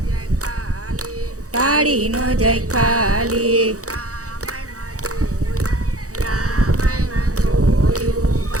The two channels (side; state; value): left; late; 0.66 ms